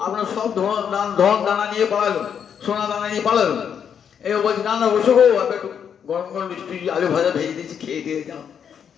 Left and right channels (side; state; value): right; quieter; 7.9 dB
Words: আপনার সব ধন দানা নিয়ে পালালো, সোনা দানা নিয়ে পালালো। এই বলছি না না বসো গো, একটু গরম গরম মিষ্টি আলু ভাজা ভেজে দিয়েছি, খেয়ে দিয়ে যাও।